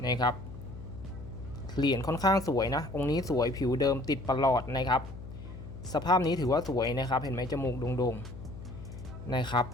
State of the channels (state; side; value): noise; left; hum, 12 dB below the sound